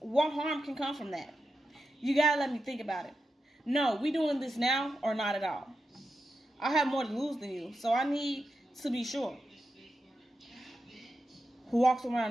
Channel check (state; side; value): normal; both; correlation 0.89